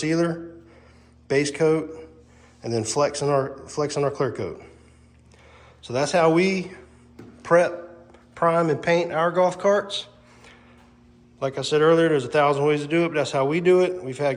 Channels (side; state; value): both; identical; correlation 1.00